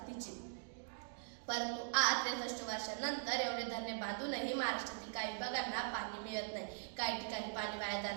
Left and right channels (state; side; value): silent; left; digital silence